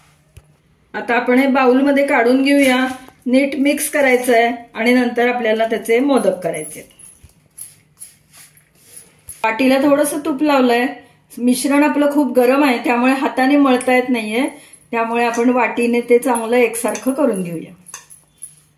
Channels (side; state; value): both; identical; correlation 1.00